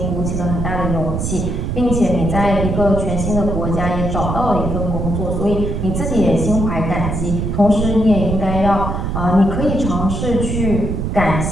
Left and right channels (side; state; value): right; noise; rumble, 2 dB below the sound